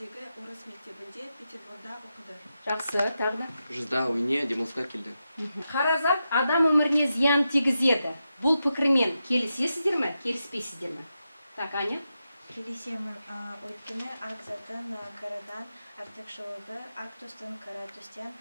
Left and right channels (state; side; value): inverted; both; correlation -0.88